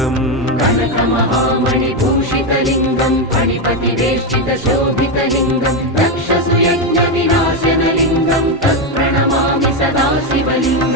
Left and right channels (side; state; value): both; normal; correlation 0.08